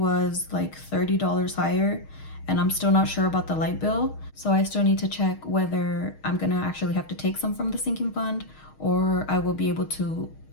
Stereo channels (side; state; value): right; late; 6.4 ms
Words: like $30 higher, and I'm still not sure about the light bill. So I still need to check whether I'm gonna actually have to take some from the sinking fund, or I will be able to